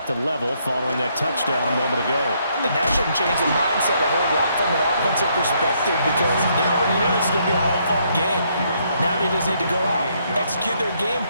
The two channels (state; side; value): inverted; both; correlation -0.72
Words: to level following that touchdown a moment ago. And that shouldn't change the mindset a whole lot from an offensive perspective because they already knew this was going to be a hard-fought game. Now they just need to go out, execute their game